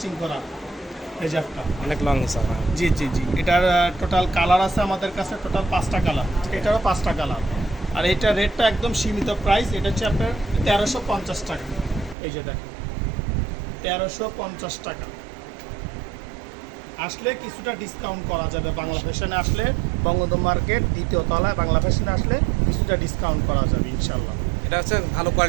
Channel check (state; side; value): drops out; left; at 12.2 s